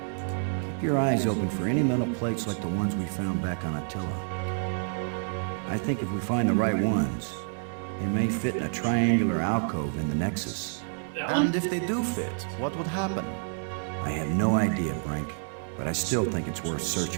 Keep your eyes open for any metal plates like the ones we found back on Attila. I think if we find the right ones, they may fit in a triangular alcove in the Nexus. And if they do fit, what would happen? I have no idea, Brink, but I still think it's worth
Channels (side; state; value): left; silent; digital silence